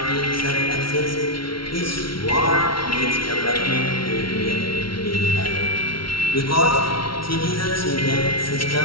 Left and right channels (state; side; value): late; right; 0.74 ms